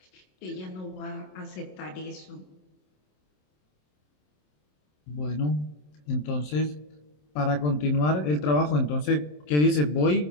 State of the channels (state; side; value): late; right; 27 ms